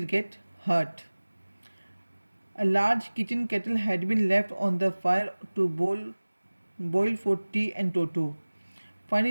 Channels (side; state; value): both; inverted; correlation -1.00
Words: get hurt. A large kitchen kettle had been left on the fire to boil for tea, and Toto,